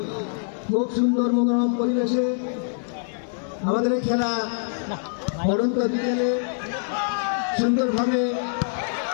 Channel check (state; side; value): silent; right; 62 dB below the other